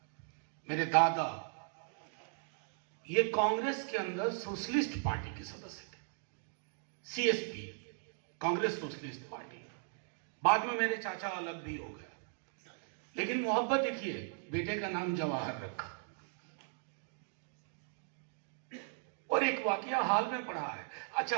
मेरे दादा, ये कांग्रेस के अंदर सोशलिस्ट पार्टी के सदस्य थे। CSP, Congress socialist party. बाद में मेरे चाचा अलग भी हो गए, लेकिन मोहब्बत देखिए, बेटे का नाम जवाहर रखा। और एक वाकया हाल में पढ़ा है।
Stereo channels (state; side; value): silent; left; 53 dB below the other